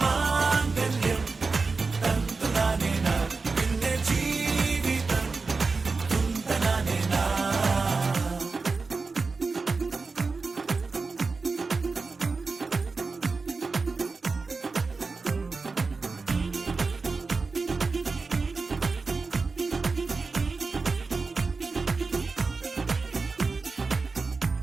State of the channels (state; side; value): quieter; left; 4.2 dB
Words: മാംഗല്യം തന്തുനാനേന പിന്നെ ജീവിതം തുന്തനാനേന.